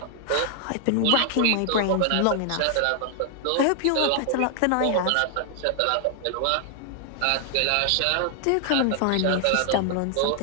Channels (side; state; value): both; different; correlation 0.00